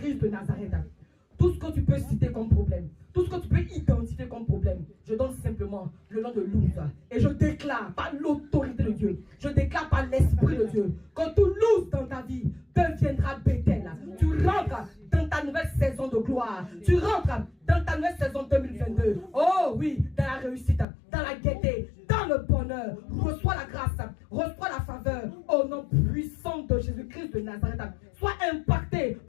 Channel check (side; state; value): right; drops out; at 20.9 s